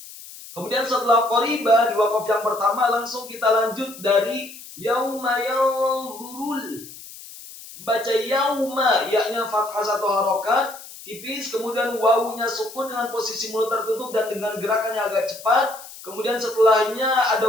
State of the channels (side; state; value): left; noise; hiss, 16 dB below the sound